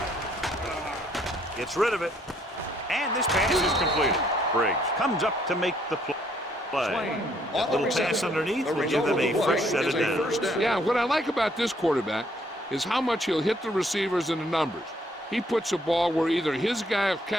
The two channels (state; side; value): normal; both; correlation 0.67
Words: Gets rid of it. And this pass is completed. Briggs comes up to make the play. That little pass underneath will give them a fresh set of downs. Yeah, what I like about this quarterback is how much he'll hit the receivers and the numbers. He puts a ball where either his guy will